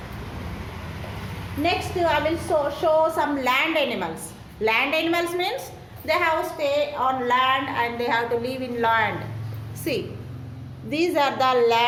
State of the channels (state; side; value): identical; both; correlation 1.00